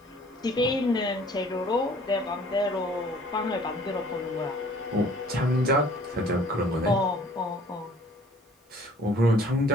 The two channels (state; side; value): normal; both; correlation 0.54